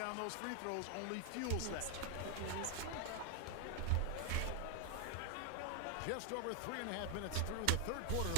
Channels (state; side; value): different; both; correlation 0.00